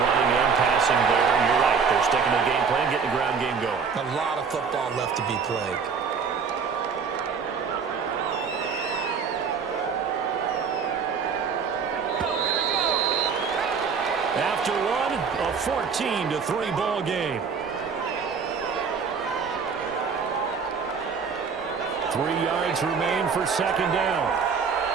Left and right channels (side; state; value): left; quieter; 5.9 dB